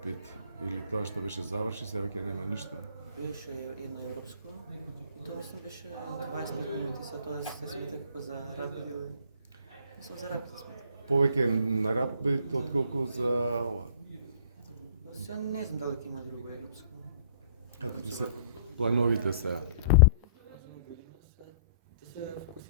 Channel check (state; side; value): inverted; both; correlation -0.52